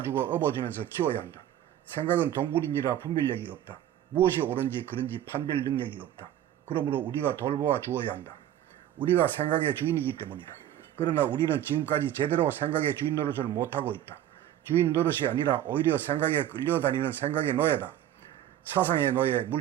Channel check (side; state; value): left; quieter; 11.7 dB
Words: 업어주면서 키워야 한다. 생각은 동물인지라 분별력이 없다. 무엇이 옳은지 그른지 판별 능력이 없다. 그러므로 우리가 돌보아 주어야 한다. 우리가 생각의 주인이기 때문이다. 그러나 우리는 지금까지 제대로 생각의 주인 노릇을 못하고 있다. 주인 노릇이 아니라 오히려 생각에 끌려다니는 생각의 노예다. 사상의 노예,